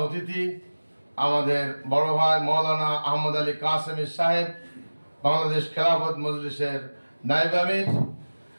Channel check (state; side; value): inverted; both; correlation -1.00